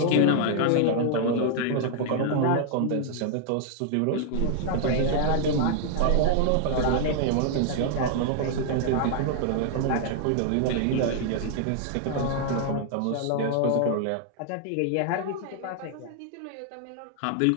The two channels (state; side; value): different; both; correlation 0.00